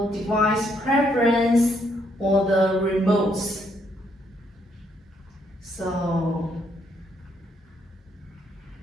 device preference or the remotes. So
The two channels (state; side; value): normal; both; correlation 0.72